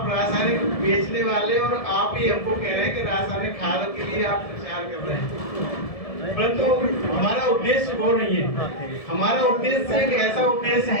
रासायनिक बेचने वाले और आप ही हमको कह रहे हैं कि रासायनिक खाद के लिए आप प्रचार कर रहे हैं, परंतु हमारा उद्देश्य वो नहीं है। हमारा उद्देश्य एक ऐसा उद्देश्य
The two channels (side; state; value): right; late; 1.7 ms